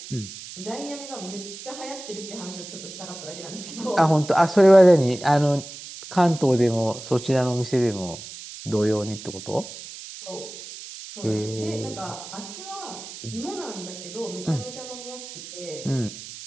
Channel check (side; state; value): right; noise; hiss, 13 dB below the sound